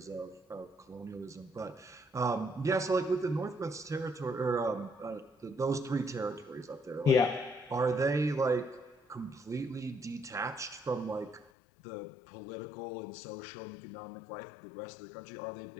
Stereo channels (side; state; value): right; drops out; at 11.5 s